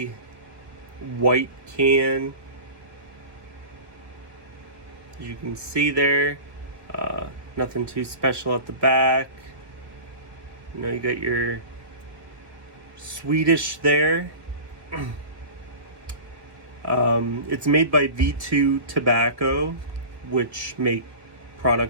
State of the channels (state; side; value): late; left; 1.2 ms